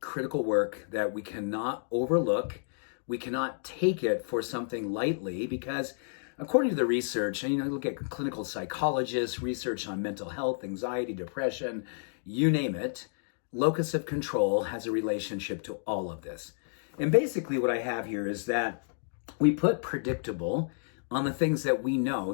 critical work that we cannot overlook. We cannot take it for something lightly because according to the research, and look at clinical psychologists, research on mental health, anxiety, depression, you name it, locus of control has a relationship to all of this. And basically what I have here is that we put predictable on the things that we know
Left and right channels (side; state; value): right; silent; digital silence